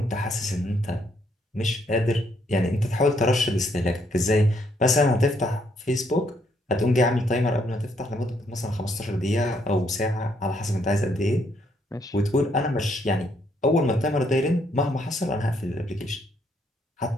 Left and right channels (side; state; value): both; normal; correlation 0.72